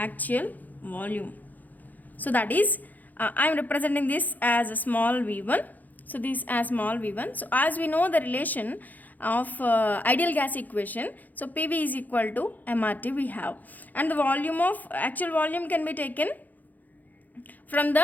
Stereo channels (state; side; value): late; right; 0.082 ms